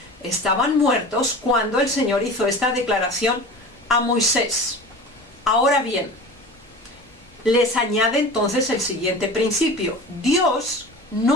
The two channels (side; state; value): both; normal; correlation 0.36